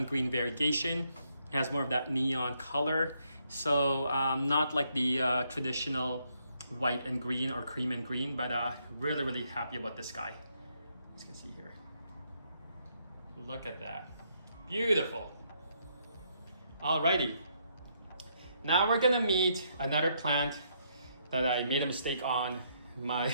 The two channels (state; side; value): inverted; both; correlation -0.74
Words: green variegation. It has more of that neon color. So not like the traditional white and green or cream and green, but really happy about this guy. As you can see here. Look at that. Beautiful. Alrighty. Now we're gonna meet another plant that I made a mistake on. My